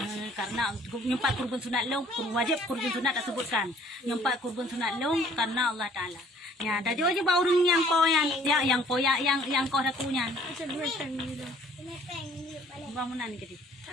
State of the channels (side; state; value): both; normal; correlation 0.57